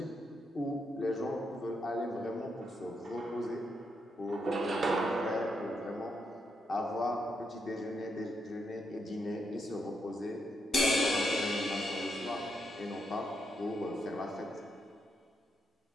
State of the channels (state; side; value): normal; both; correlation 0.80